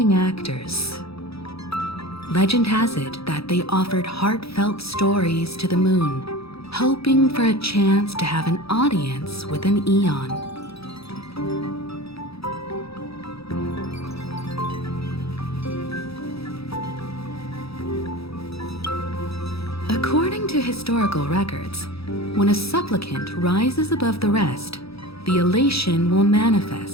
actors. Legend has it that they offered heartfelt stories to the moon, hoping for a chance to have an audience with an eon. According to historical records, when a supplicant rises above the rest, the elation will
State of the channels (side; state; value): right; late; 0.77 ms